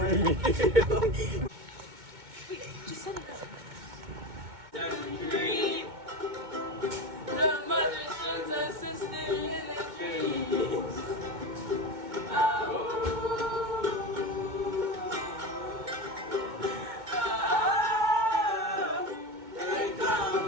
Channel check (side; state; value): left; late; 2.2 ms